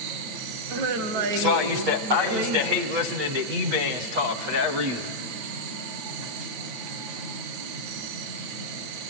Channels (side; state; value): left; late; 8.3 ms